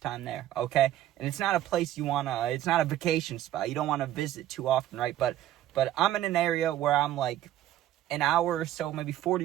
time there, okay? And it's not a place it's not a vacation spot. You don't want to visit too often, right? But I'm in an area where I'm like an hour or so, maybe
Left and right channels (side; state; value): left; quieter; 13.0 dB